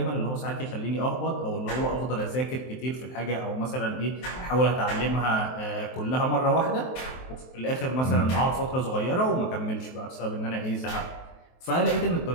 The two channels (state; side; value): late; right; 23 ms